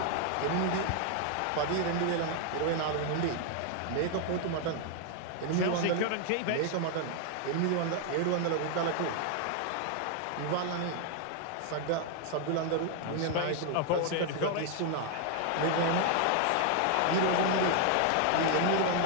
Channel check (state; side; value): different; both; correlation 0.00